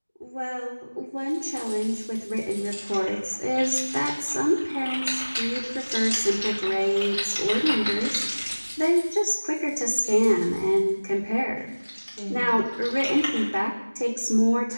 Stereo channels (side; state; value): both; inverted; correlation -1.00